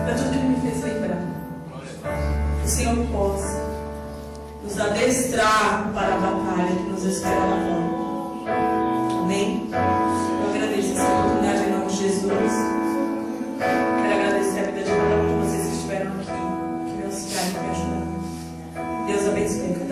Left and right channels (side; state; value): both; identical; correlation 1.00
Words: para tudo que Ele me fez lembrar. Que o Senhor possa nos adestrar para a batalha que nos espera lá fora. Amém? Eu agradeço essa oportunidade em nome de Jesus. Quero agradecer a vida de cada um de vocês que estiveram aqui, que me auxiliaram e me ajudaram. Deus abençoe